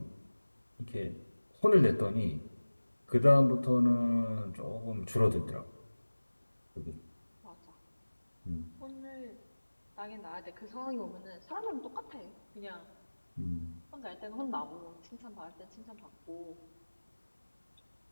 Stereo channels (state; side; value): inverted; both; correlation -1.00